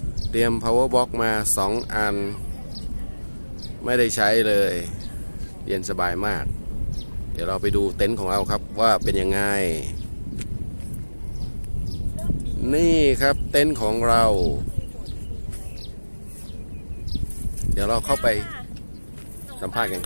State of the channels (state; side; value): inverted; both; correlation -1.00